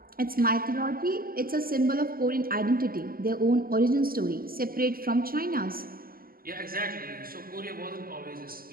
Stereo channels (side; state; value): left; late; 0.42 ms